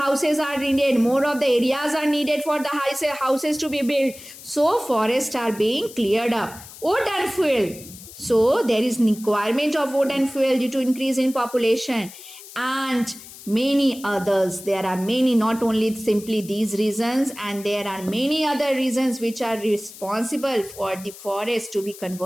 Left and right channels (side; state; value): left; noise; hiss, 17 dB below the sound